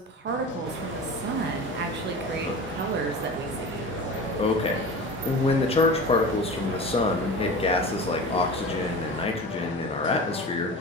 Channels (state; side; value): normal; both; correlation 0.33